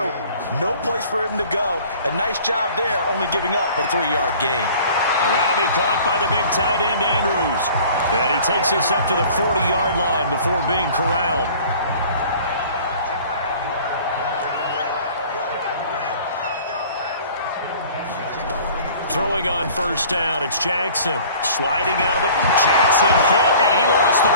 No place for him to go. A nice job there, only giving up a 3-yard gain. And that'll be caught by the big tight end, Andrews. And he takes this up to the 40-yard line before being corralled. Throwing on first down, it's Jackson. Sliding out of the... Jackson hit, and he lost the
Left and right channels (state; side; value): inverted; both; correlation -0.48